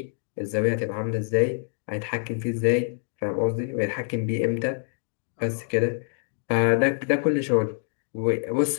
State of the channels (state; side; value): silent; right; 58 dB below the other